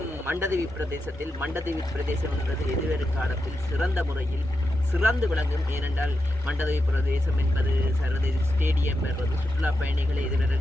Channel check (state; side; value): normal; both; correlation 0.87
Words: மண்டதீவு பிரதேசம் என்பது எதிர்வரும் காலத்தில் சிறந்த முறையில் சிறந்து விளங்கும். ஏனென்றால் மண்டதீவு பிரதேசம் என்பது சர்வதேச ஸ்டேடியம் என்பது சுற்றுலா பயணிகளை